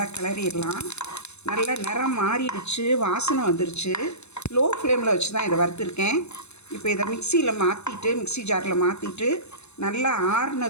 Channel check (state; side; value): late; right; 0.81 ms